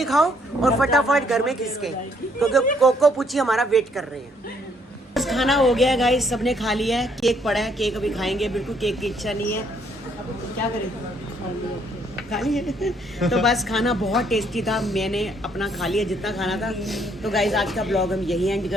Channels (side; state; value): both; normal; correlation 0.68